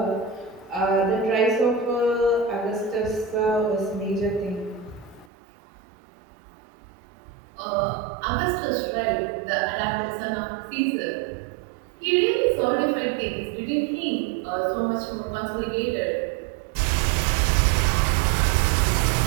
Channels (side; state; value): left; drops out; at 5.3 s